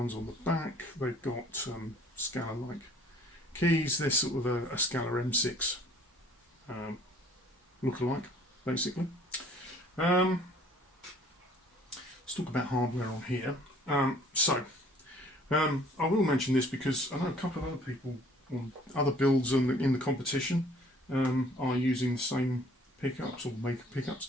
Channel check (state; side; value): normal; both; correlation 0.55